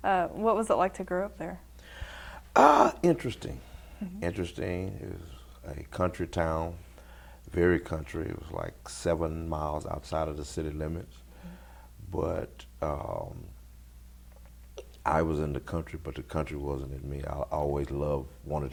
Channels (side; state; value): both; identical; correlation 1.00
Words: What was it like to grow up there? Interesting. Interesting. It was a country town, very country. It was like 7 miles outside of the city limits. But I was in the country, but the country wasn't in me. I always wanted